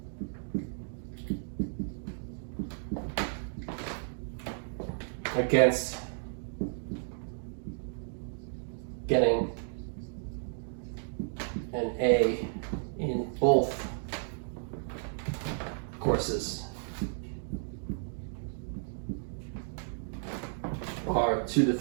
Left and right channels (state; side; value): silent; left; digital silence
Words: against getting an A in both courses are 2 to